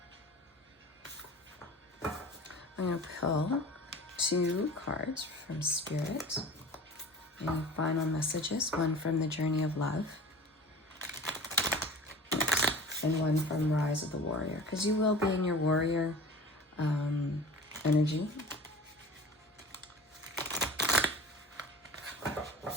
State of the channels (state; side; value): normal; both; correlation 0.39